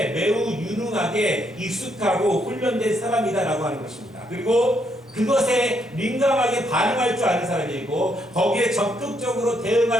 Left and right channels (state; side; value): normal; both; correlation 0.75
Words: 매우 유능하게 익숙하고 훈련된 사람이다라고 하는 것입니다. 그리고 그것에 민감하게 반응할 줄 아는 사람이고 거기에 적극적으로